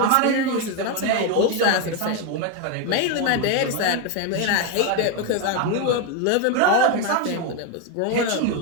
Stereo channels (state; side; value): different; both; correlation 0.02